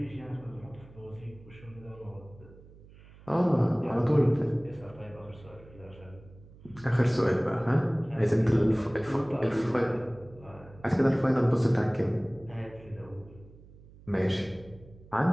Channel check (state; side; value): noise; right; hum, 22 dB below the sound